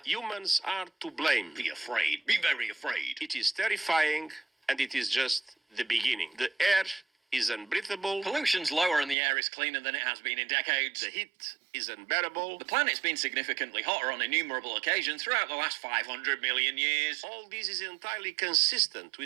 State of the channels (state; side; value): drops out; left; at 9.2 s